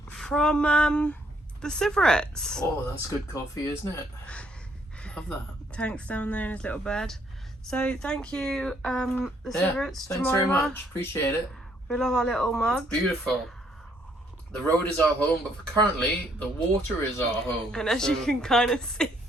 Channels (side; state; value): both; normal; correlation 0.68